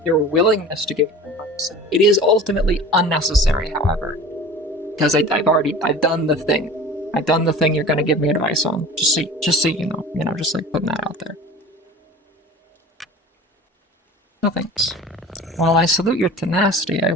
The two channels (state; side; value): normal; both; correlation 0.39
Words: your willingness to give me advice. It is ultimately unnecessary, however, because I've done the thing. I've done the thing you're going to give me advice on. Just so you know, just like putting that out there. No thanks. While I salute your tenacity, I